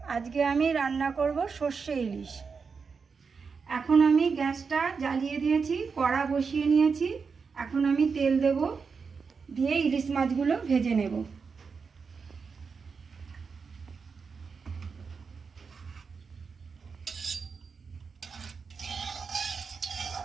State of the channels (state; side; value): quieter; left; 5.3 dB